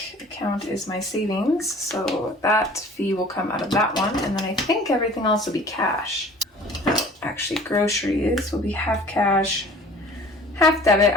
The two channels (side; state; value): both; normal; correlation 0.47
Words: account is my savings, so that fee will come out of that one. And then I think everything else will be cash. Actually, groceries will be half cash, half debit.